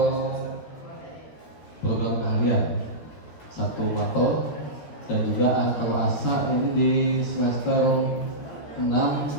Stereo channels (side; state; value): right; late; 13 ms